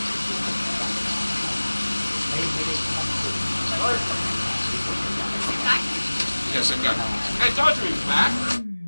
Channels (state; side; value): inverted; both; correlation -1.00